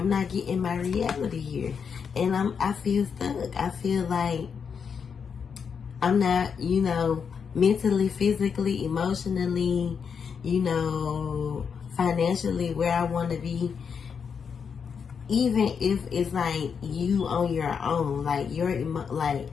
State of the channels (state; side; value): quieter; right; 6.5 dB